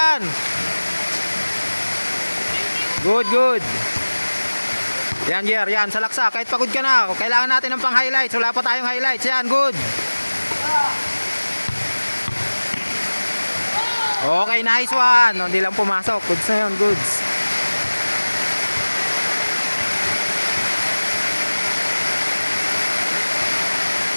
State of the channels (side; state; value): both; inverted; correlation -1.00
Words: Good, good. Yan, Jer, yan, salaksak. Kahit pagod ka na, kailangan natin ng pang-highlights. Wala pa tayong highlights. Yan, good. Okay, nice one. Hindi lang pumasok. Goods na yun, goods.